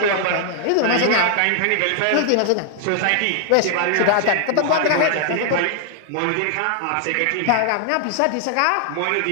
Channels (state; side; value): different; both; correlation 0.00